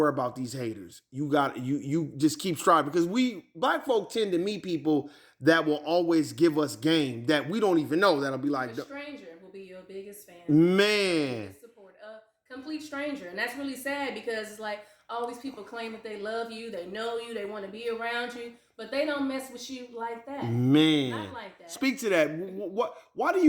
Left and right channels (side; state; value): both; identical; correlation 1.00